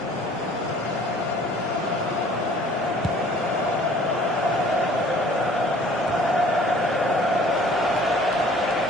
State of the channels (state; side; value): normal; both; correlation 0.53